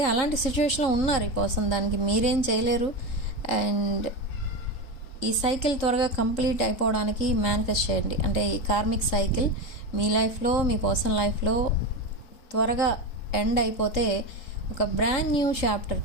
అలాంటి సిచ్యువేషన్లో ఉన్నారు ఈ పర్సన్. దానికి మీరేం చేయలేరు. అండ్ ఈ సైకిల్ త్వరగా కంప్లీట్ అయిపోవడానికి మేనిఫెస్ట్ చేయండి. అంటే ఈ కార్మిక్ సైకిల్ మీ లైఫ్లో, మీ పర్సన్ లైఫ్లో త్వరగా ఎండ్ అయిపోతే ఒక brand new chapter,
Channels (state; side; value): late; right; 3.7 ms